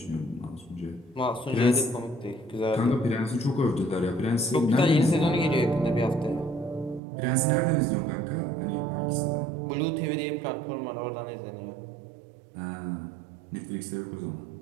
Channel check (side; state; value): left; drops out; at 7.0 s